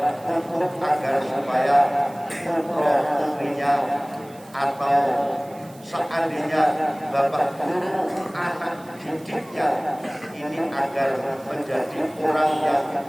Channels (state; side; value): noise; right; hiss, 25 dB below the sound